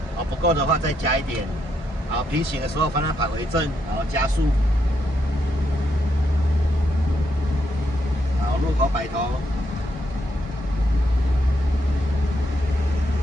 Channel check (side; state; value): both; normal; correlation 0.78